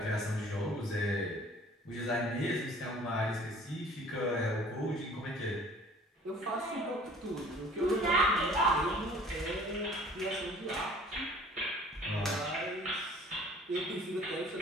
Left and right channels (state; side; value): normal; both; correlation 0.51